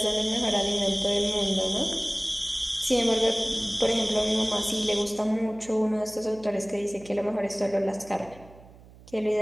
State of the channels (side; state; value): right; noise; hum, 22 dB below the sound